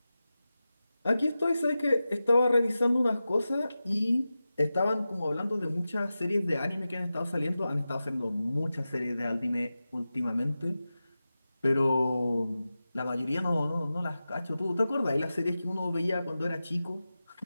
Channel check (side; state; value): both; inverted; correlation -0.94